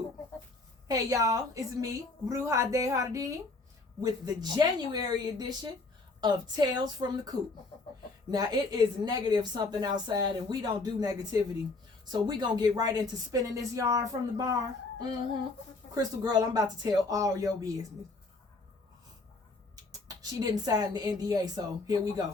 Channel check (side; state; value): right; quieter; 3.5 dB